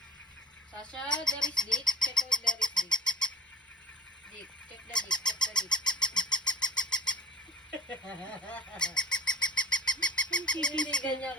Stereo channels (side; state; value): both; normal; correlation 0.44